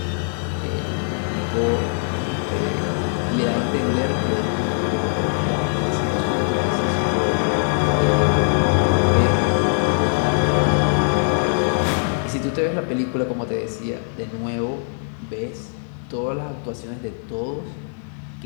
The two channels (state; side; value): silent; right; digital silence